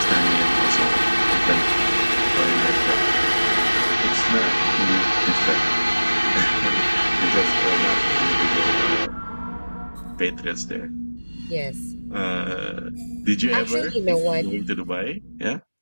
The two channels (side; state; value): both; inverted; correlation -1.00